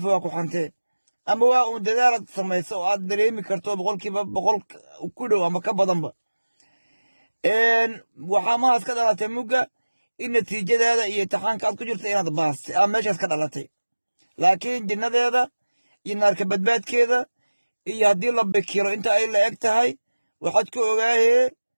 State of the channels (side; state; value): both; inverted; correlation -1.00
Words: waa ku xantee, ama waa uun dadaalaad samayso oo aad dareemi karto 100% ku dhow ama ka badanba. waxaa mahaas ka dhalatay mugga in natiijadaada iyo imtixaanka aad ku jirta inaad baastay aa meeshaas ka dhalatay. laakiin jinnadeeda iyo naarka badbaadkeeda iyo haddii la bikiro inta ay la eg tahay waxaad ku ogaahee